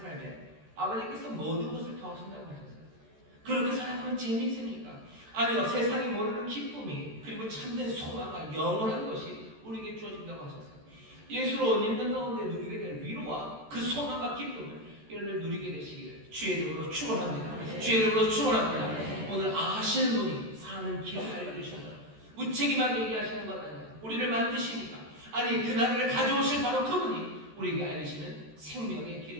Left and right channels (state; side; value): late; left; 14 ms